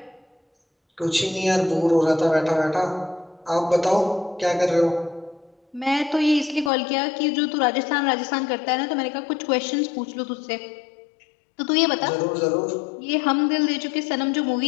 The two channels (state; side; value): drops out; right; at 6.7 s